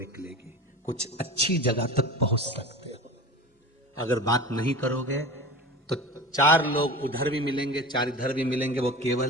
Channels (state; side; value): normal; both; correlation 0.33